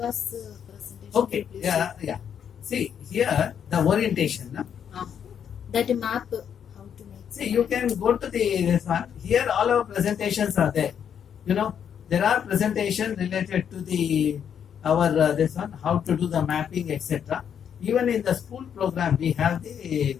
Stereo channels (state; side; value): quieter; right; 8.3 dB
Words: presentation. Okay, yeah. See, here the orientation. No? That map, how to make. See, you can go to this one. Here all our presentations are there. You know, there are presentations related to our this one, how to do the mapping, etc. Even in the school program, we have